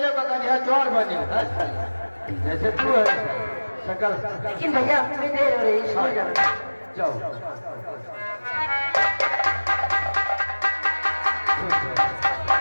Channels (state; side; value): inverted; both; correlation -1.00